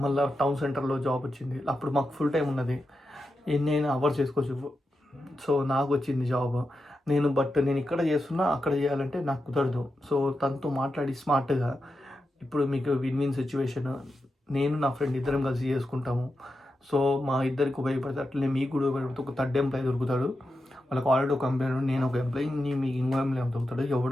మళ్ళీ టౌన్ సెంటర్లో జాబ్ వచ్చింది. అప్పుడు మాకు ఫుల్ టైం ఉన్నది, ఎన్నైనా అవర్స్ చేసుకోవచ్చు. సో నాకు వచ్చింది జాబ్. నేను ఇక్కడ చేస్తున్నా, అక్కడ చేయాలంటే నాకు కుదరదు. సో తనతో మాట్లాడి స్మార్ట్గా, ఇప్పుడు మీకు విన్ సిచ్యువేషన్, నేను నా ఫ్రెండ్ ఇద్దరం కలిసి చేసుకుంటాము. సో మా ఇద్దరికి ఉపయోగపడితే అట్లనే మీకు కూడా ఉపయోగపడితే ఒక 3rd ఎంప్లాయీ దొరుకుతాడు. వాళ్ళకి ఆల్రెడీ ఒక ఎంప్లాయీ, నేను ఒక ఎంప్లాయీ, మీకు ఇంకో ఎంప్లాయీ దొరుకుతాడు.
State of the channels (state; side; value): normal; both; correlation 0.89